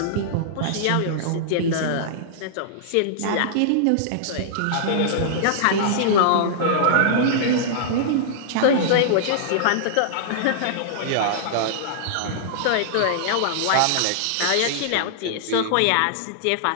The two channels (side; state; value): both; different; correlation -0.01